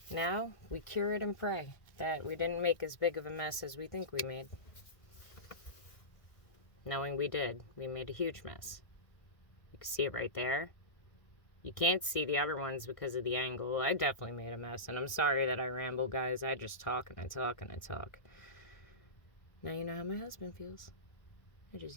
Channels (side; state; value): right; late; 1.5 ms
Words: Now we cure it and pray that we didn't make as big of a mess as we think we made. Knowing we did, we made a huge mess. You can see it right there. You can't see the other ones because of the angle. I definitely made a mess, and I'm sorry that I ramble, guys. I just talk and I talk and I talk. Now you know how my husband feels. I just